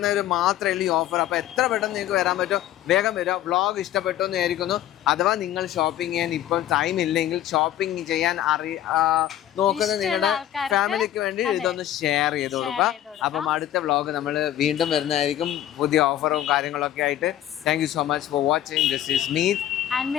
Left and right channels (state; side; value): quieter; right; 12.2 dB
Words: മാത്രമേ ഉള്ളൂ ഈ ഓഫർ. അപ്പോൾ എത്ര പെട്ടെന്ന് നിങ്ങൾക്ക് വരാൻ പറ്റുമോ വേഗം വരിക. വ്ളോഗ് ഇഷ്ടപ്പെട്ടു എന്ന് വിചാരിക്കുന്നു. അഥവാ നിങ്ങൾ ഷോപ്പിംഗ് ചെയ്യാൻ ഇപ്പം ടൈം ഇല്ലെങ്കിൽ, ഷോപ്പിംഗ് ചെയ്യാൻ നോക്കുന്ന നിങ്ങളുടെ ഫാമിലിക്ക് വേണ്ടി ഇതൊന്ന് ഷെയർ ചെയ്ത് കൊടുക്കുക. അപ്പം അടുത്ത വ്ളോഗ് നമ്മൾ വീണ്ടും വരുന്നതായിരിക്കും പുതിയ ഓഫറും കാര്യങ്ങളൊക്കെ ആയിട്ട്. Thank you so much for watching. This is Meet and